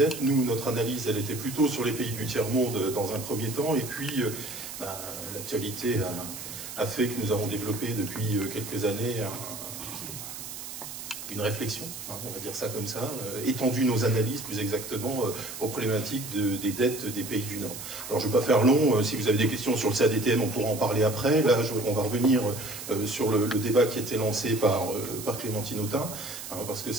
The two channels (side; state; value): right; noise; hiss, 10 dB below the sound